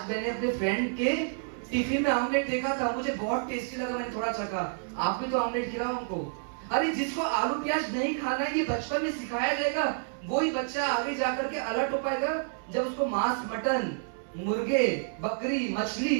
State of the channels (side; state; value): left; silent; 58 dB below the other